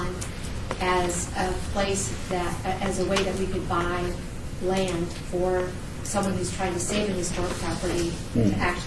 as a place that, as a way that we could buy land for someone who's trying to save an historic property to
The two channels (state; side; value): identical; both; correlation 1.00